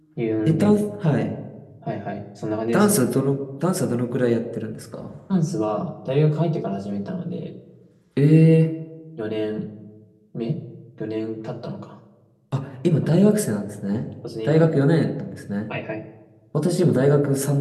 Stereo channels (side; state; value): both; identical; correlation 1.00